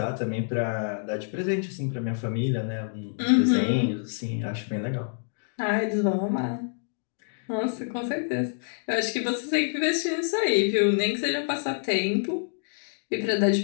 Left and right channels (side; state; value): right; silent; digital silence